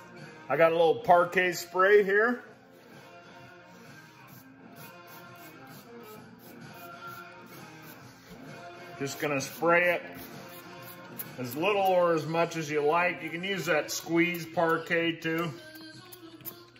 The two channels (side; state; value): both; identical; correlation 1.00